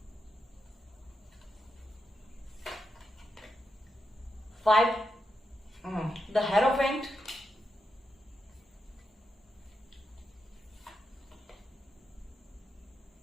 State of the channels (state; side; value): normal; both; correlation 0.85